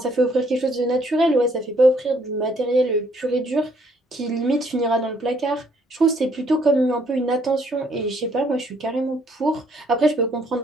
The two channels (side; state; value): both; normal; correlation 0.67